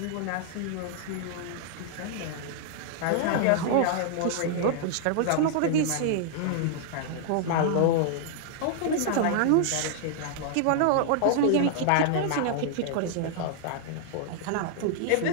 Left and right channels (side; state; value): both; different; correlation -0.01